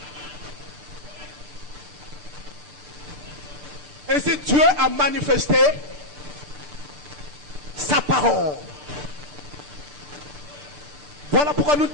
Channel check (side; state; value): left; late; 6.8 ms